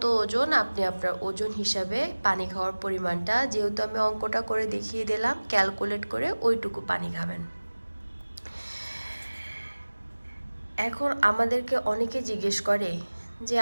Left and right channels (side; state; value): both; inverted; correlation -1.00